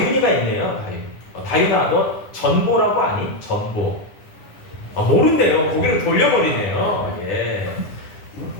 있네요. 다윤아, 너 전보라고 아니? 전보. 모른대요. 고개를 돌려버리네요. 예.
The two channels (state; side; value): late; right; 9.9 ms